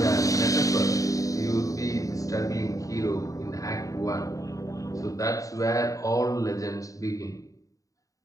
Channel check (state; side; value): late; right; 0.16 ms